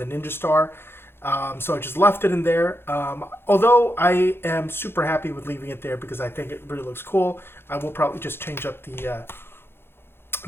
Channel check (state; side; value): late; right; 0.11 ms